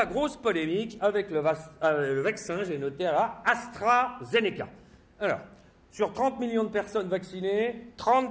grosse polémique avec le vaccin, j'ai noté là, AstraZeneca. Alors, sur 30 millions de personnes vaccinées,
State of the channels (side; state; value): both; identical; correlation 1.00